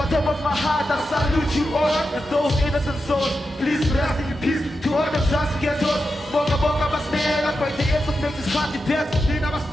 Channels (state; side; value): normal; both; correlation 0.89